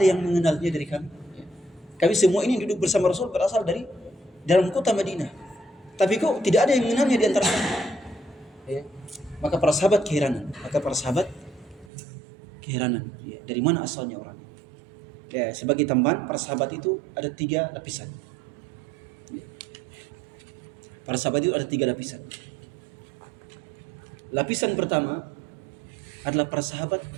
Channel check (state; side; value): drops out; left; at 11.9 s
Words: yang mengenalnya dari kami? Kami semua ini duduk bersama Rasul berasal dari dalam kota Madinah, tapi kok tidak ada yang mengenalnya di antara kami? Ya. Maka para sahabat keheranan. Ya, dari mana asalnya orang ini? Ya, sebagai tambahan, para sahabat itu ada 3 lapisan. Para sahabat itu ada 3 lapisan. Lapisan pertama adalah para sahabat